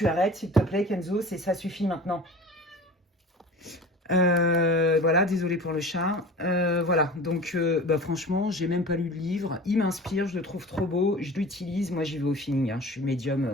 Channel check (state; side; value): normal; both; correlation 0.38